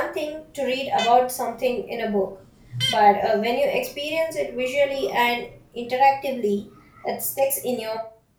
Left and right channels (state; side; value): identical; both; correlation 1.00